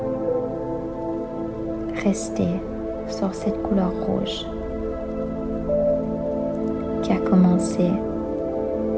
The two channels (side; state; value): both; identical; correlation 1.00